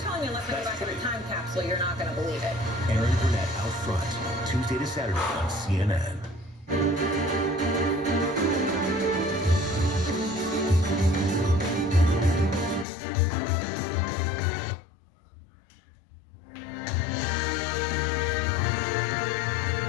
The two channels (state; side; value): drops out; right; at 12.9 s